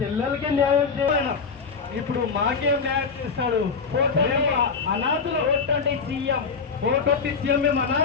న్యాయం చేయను, ఇప్పుడు మాకేం న్యాయం చేస్తాడు? అనాథుల ఓటండి సీఎం, ఓటొట్టి సీఎం.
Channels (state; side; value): quieter; right; 5.2 dB